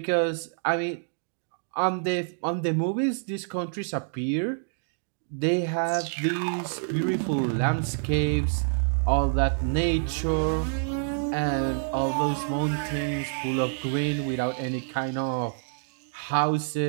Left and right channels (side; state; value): left; silent; digital silence